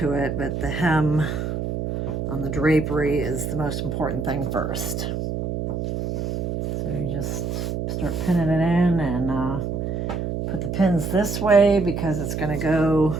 it, but the hem on the drapery is the most important thing first. So you just start pinning it in and put the pins this way because it's going to go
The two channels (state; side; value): noise; right; hum, 2 dB below the sound